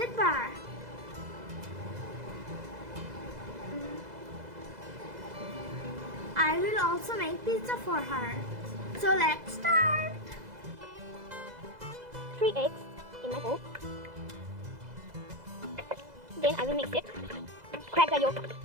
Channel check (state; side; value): late; left; 2.0 ms